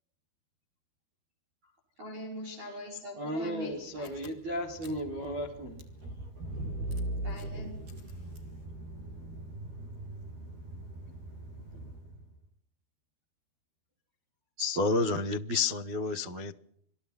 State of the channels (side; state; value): left; late; 12 ms